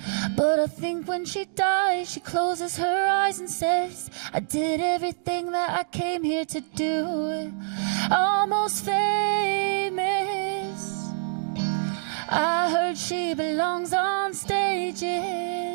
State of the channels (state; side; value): silent; left; digital silence